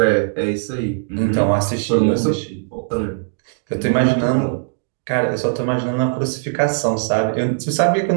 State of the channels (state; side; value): silent; left; digital silence